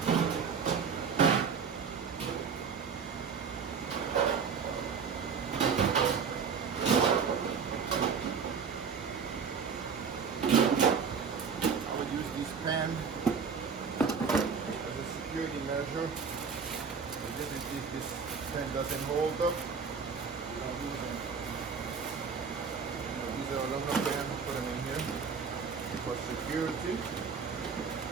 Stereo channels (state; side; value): quieter; left; 6.0 dB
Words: pan as a security measure. If this pan doesn't hold up, we don't use them. These are aluminum pans, put them in here for security.